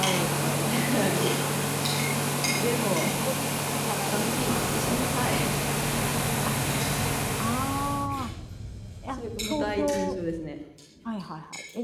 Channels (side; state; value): both; identical; correlation 1.00